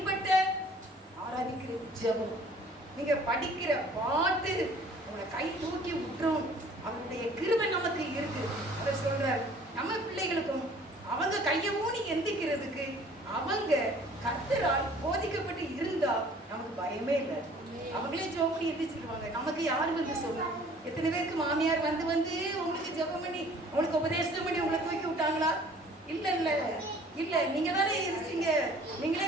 ஆராதிக்கிற ஜெபம். நீங்க படிக்கிற பாட்டு உங்களை கை தூக்கி விட்டுரும். அவருடைய கிருபை நமக்கு இருக்கு. அவர் சொல்றார், நம்ம பிள்ளைகளுக்கும் அவங்க கையை ஊனி எந்திக்கிறதுக்கு அவங்க கர்த்தரால் போதிக்கப்பட்டு இருந்தா நமக்கு பயமே இல்லை. அவங்களே ஜெபம் பண்ணி எந்திரிச்சிருவாங்க. நமக்கு யாரு வந்து சொல்லலாம்? எத்தனை பேருக்கு மாமியார் வந்து உங்களுக்கு ஜெபம் பண்ணி உங்களுக்கு உபதேசம் பண்ணி உங்களை தூக்கி விட்டாங்களா? இல்ல நீங்க தானே இருந்தீங்க. நீங்களே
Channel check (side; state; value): both; normal; correlation 0.52